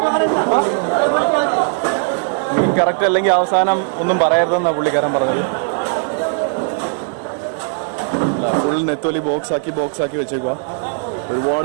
മീൻ കറക്റ്റ് അല്ലെങ്കിൽ അവസാനം ഒന്നും പറയരുതെന്നാണ് പുള്ളിക്കാരൻ പറഞ്ഞത്. ഫുൾ നെത്തോലി ബോക്സ് ആക്കി വെച്ചേക്കുക. ഒരുപാട്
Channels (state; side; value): silent; left; digital silence